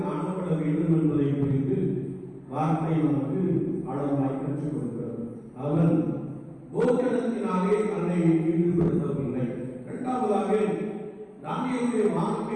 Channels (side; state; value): both; identical; correlation 1.00